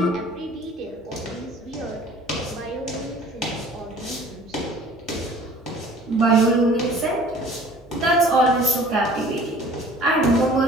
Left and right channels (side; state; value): both; normal; correlation 0.49